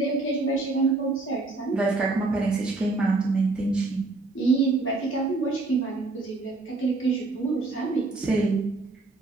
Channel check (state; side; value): quieter; left; 3.4 dB